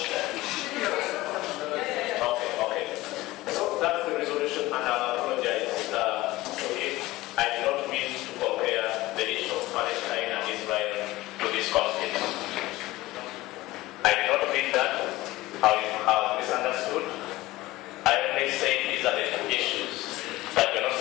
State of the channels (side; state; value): right; quieter; 18.3 dB